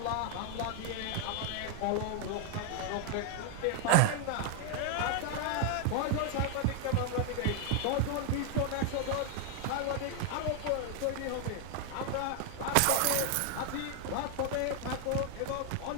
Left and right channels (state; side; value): different; both; correlation 0.00